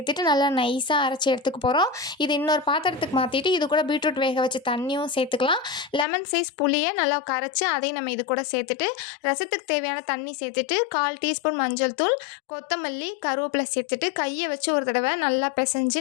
நல்லா நைஸாக அரைச்சி எடுத்துக்க போகிறோம். இது இன்னொரு பாத்திரத்துக்கு மாற்றிட்டு இது கூட பீட்ரூட் வேக வச்ச தண்ணியும் சேர்த்துக்கலாம். லெமன் சைஸ் புளியை நல்லா கரைச்சி அதையும் நம்ம இது கூட சேர்த்துட்டு, ரசத்துக்கு தேவையான தண்ணி சேர்த்துட்டு, 1/4 டீஸ்பூன் மஞ்சள் தூள், கொத்தமல்லி, கருவேப்பிலை சேர்த்துட்டு கையை வச்சு ஒரு தடவை நல்லா பிசைஞ்சு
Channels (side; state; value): right; drops out; at 6.1 s